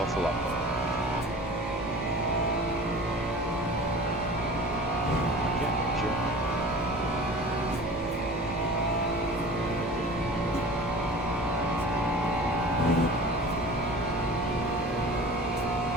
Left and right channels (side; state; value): both; normal; correlation 0.40